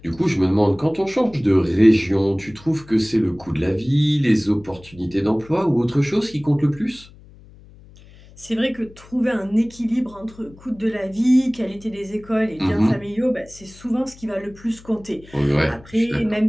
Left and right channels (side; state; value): left; noise; hum, 23 dB below the sound